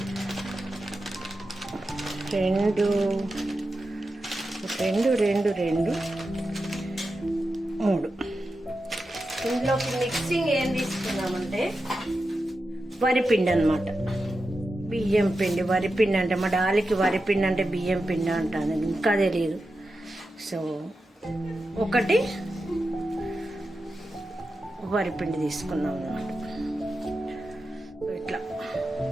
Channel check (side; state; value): both; normal; correlation 0.90